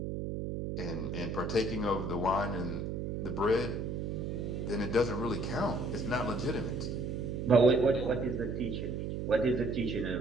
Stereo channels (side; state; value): right; noise; hum, 3 dB below the sound